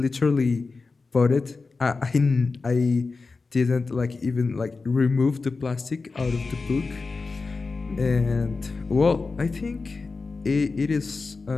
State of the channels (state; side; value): quieter; right; 4.1 dB